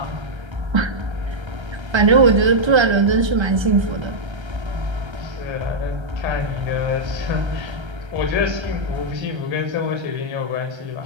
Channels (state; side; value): late; left; 1.3 ms